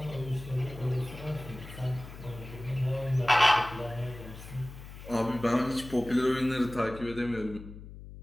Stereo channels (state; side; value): noise; left; hum, 14 dB below the sound